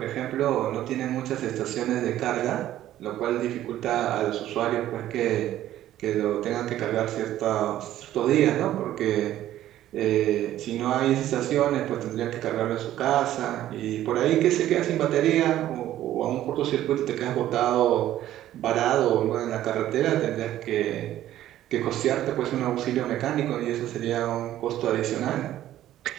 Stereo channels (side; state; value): left; quieter; 13.0 dB